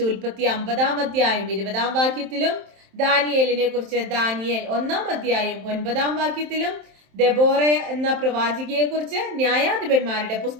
ഉൽപ്പത്തി 50-ാം അധ്യായം 20-ാം വാക്യത്തിലും ദാനിയേലിനെ കുറിച്ച് ദാനിയേൽ 1-ാം അധ്യായം 9-ാം വാക്യത്തിലും ദെബോറ എന്ന പ്രവാചികയെ കുറിച്ച് ന്യായാധിപന്മാരുടെ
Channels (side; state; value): left; late; 27 ms